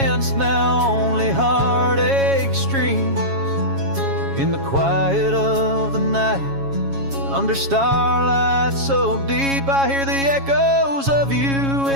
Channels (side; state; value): left; late; 7.3 ms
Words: now only heartache streams. In the quiet of the night, under starlight so deep, I hear the echoes of you